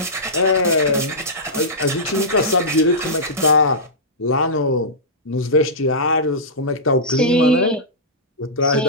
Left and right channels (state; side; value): normal; both; correlation -0.15